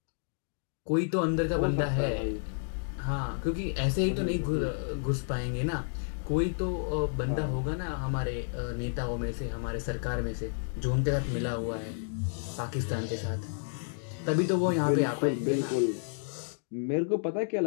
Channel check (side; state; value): right; silent; digital silence